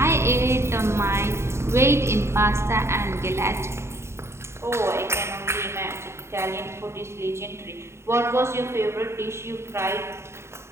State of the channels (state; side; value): late; left; 0.13 ms